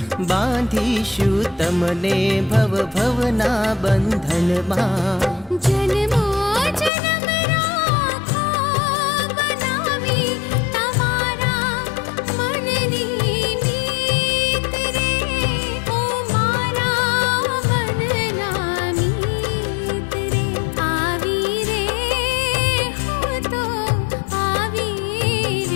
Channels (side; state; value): right; drops out; at 6.9 s